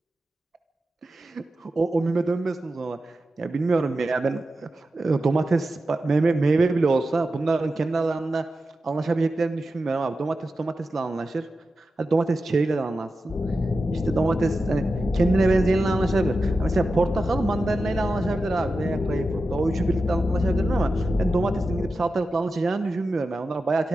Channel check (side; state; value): both; normal; correlation 0.91